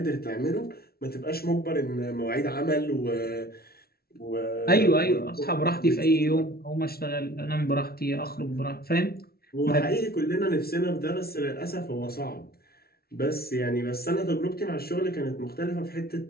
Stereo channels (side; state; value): right; late; 0.44 ms